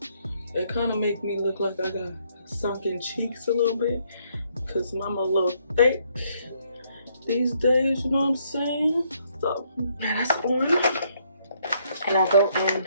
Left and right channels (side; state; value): both; inverted; correlation -0.70